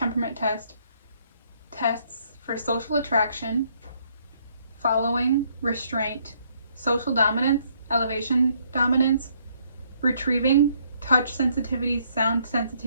Test tests for social attraction, following, restraint, social dominance, elevation dominance, retrieving, touch sensitivity, sound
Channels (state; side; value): inverted; both; correlation -0.68